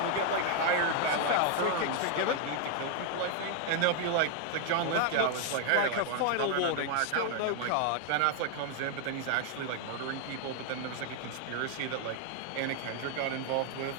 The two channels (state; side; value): different; both; correlation 0.00